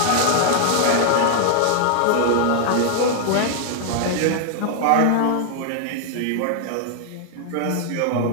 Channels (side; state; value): both; different; correlation 0.00